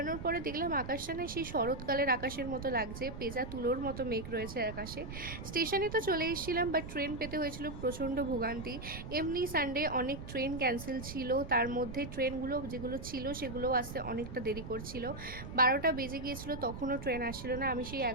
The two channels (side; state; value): right; noise; rumble, 9 dB below the sound